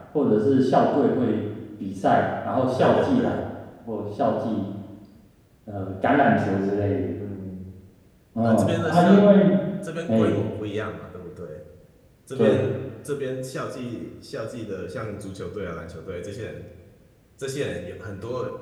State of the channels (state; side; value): identical; both; correlation 1.00